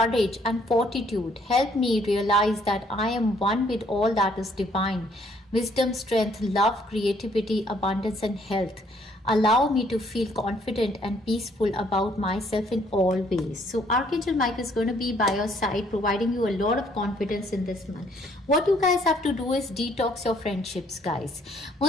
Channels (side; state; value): both; normal; correlation 0.65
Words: and fortitude. Help me realize that I am one with all that is divine. Wisdom, strength, love, creativity, abundance, and health. Allow me to feel confident and peaceful about myself in all ways. So Archangel Michael is going to be by your side, providing you a lot of confidence in this month. What you guys have to do is detox your friendships, guys.